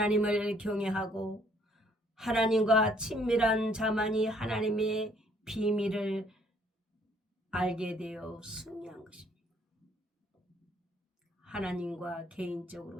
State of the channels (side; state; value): both; normal; correlation 0.63